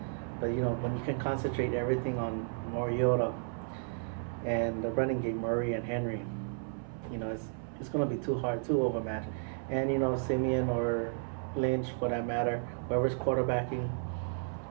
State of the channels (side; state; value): left; silent; 56 dB below the other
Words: you know, when you can concentrate everything on Mariota and the running game, Murray and Henry, you know, it's going to be too hard, too overmatched. And you know, Simeon or Lynch, for that matter, whoever's quarterbacking,